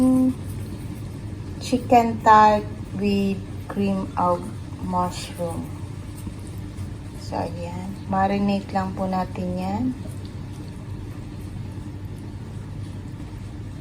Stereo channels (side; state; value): both; identical; correlation 1.00